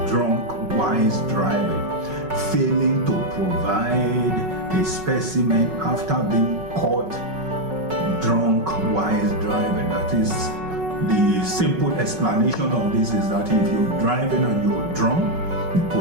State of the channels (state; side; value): late; left; 5.4 ms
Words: drunk while driving. Failing to provide a specimen after being caught drunk while driving. That is, the simple explanation of this is that if you're driving and you're drunk, the